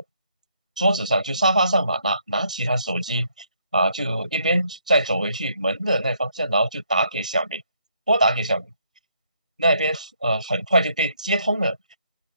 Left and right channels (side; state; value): both; inverted; correlation -0.70